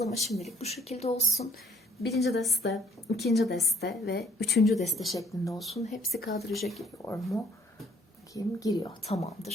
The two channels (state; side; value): normal; both; correlation 0.60